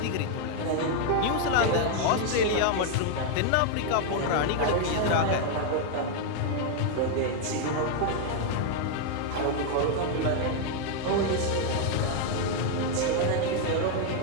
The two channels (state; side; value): different; both; correlation 0.00